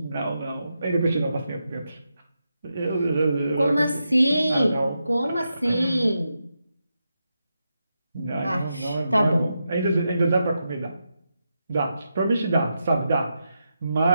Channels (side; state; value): both; inverted; correlation -0.86